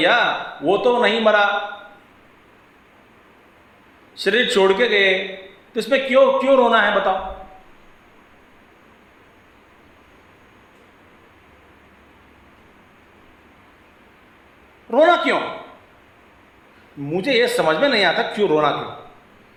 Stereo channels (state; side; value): identical; both; correlation 1.00